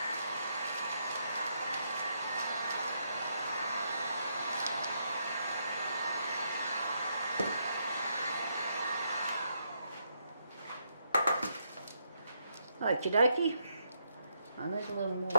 Okie dokie. I need a little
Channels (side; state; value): both; inverted; correlation -0.77